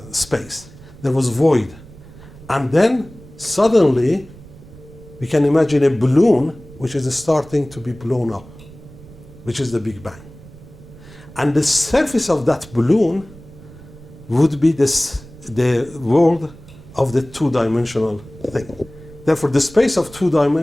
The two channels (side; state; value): right; noise; rumble, 20 dB below the sound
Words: space. There was void. And then suddenly we can imagine a balloon which is starting to be blown up, which is the Big Bang. And the surface of that balloon would be the world of the two-dimensional thing. Therefore, the space of two